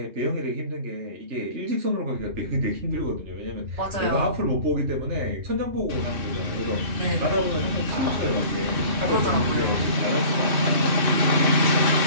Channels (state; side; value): late; left; 2.6 ms